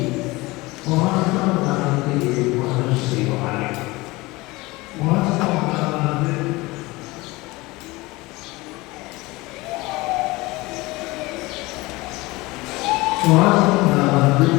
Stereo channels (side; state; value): right; quieter; 21.9 dB